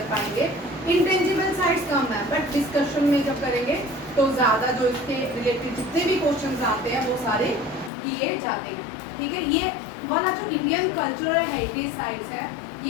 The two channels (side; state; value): right; drops out; at 7.9 s